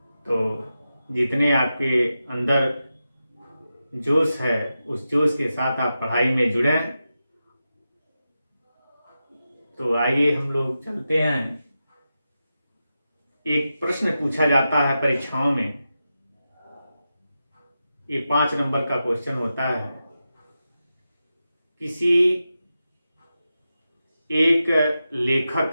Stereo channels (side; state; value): both; inverted; correlation -0.91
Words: तो जितने आपके अंदर जोश है उस जोश के साथ आप पढ़ाई में जुड़ें। तो आइए हम लोग चलते हैं। एक प्रश्न पूछा जाता है परीक्षाओं में, ये 5 नंबर का क्वेश्चन होता है। किसी एक